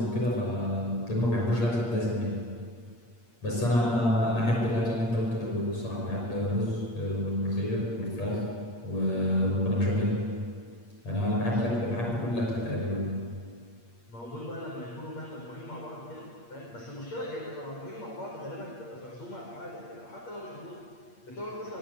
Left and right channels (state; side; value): late; right; 8.5 ms